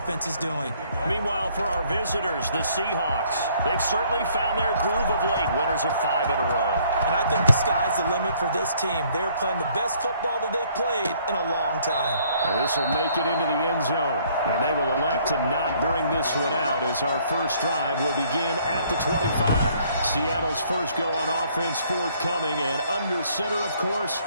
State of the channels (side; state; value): both; inverted; correlation -0.63